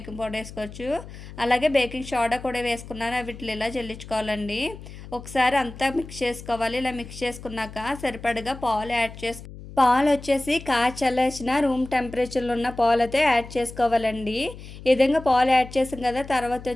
పౌడర్ వేసుకోవచ్చు. అలాగే బేకింగ్ సోడా కూడా వేసుకున్నాను. వీటిని ఇలా జల్లించుకోవాలండి. ఒకసారి అంతా మిక్స్ చేసుకోవాలి. ఇలా మిక్స్ చేసుకున్నాక సరిపడగా పాలు యాడ్ పాలొచ్చేసి చల్లార్చిన రూమ్ టెంపరేచర్‌లో ఉన్న పాలైతే యాడ్ చేసుకోవాలండి. ఈ విధంగా పాలు యాడ్ చేసాం కదా! తర్వాత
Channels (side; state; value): left; noise; hum, 14 dB below the sound